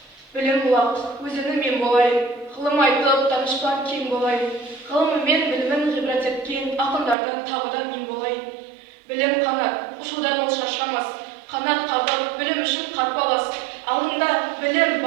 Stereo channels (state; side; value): drops out; left; at 7.2 s